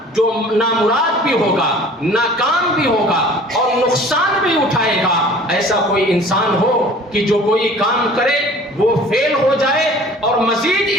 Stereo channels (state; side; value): normal; both; correlation 0.47